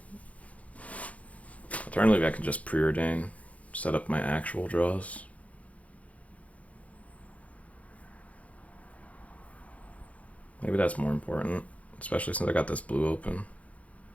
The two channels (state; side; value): late; right; 0.067 ms